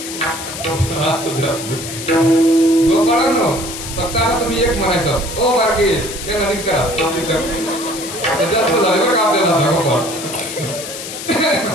गोपाळांनो फक्त आता तुम्ही एक म्हणायचं ओ बारके ते नदी करा जास्त झाले बरं का आपल्याला गोपाळ.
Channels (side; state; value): left; noise; hiss, 9 dB below the sound